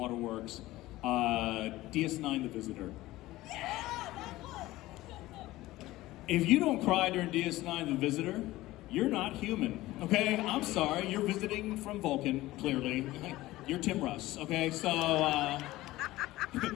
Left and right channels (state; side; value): quieter; right; 17.4 dB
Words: DS9 The Visitor. If you don't cry during DS9 The Visitor, you're not human, okay? I'm sorry, you're visiting from Vulcan, clearly. You're Tim Russ, okay? So,